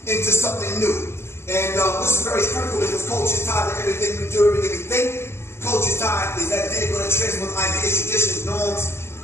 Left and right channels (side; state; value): right; late; 0.12 ms